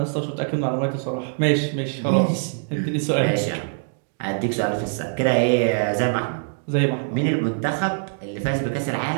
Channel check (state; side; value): silent; left; digital silence